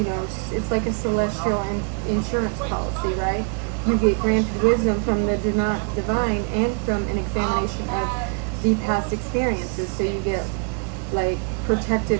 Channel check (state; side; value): quieter; left; 38.2 dB